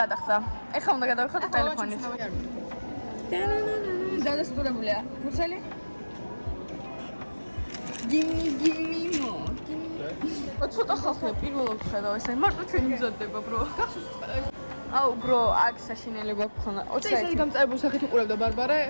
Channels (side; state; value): both; inverted; correlation -1.00